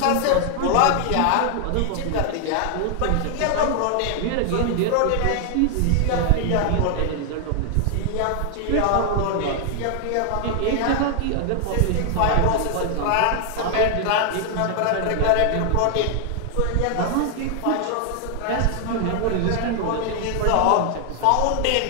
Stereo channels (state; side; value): different; both; correlation 0.00